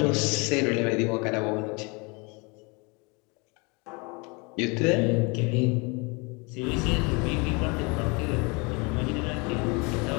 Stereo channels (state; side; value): quieter; right; 29.6 dB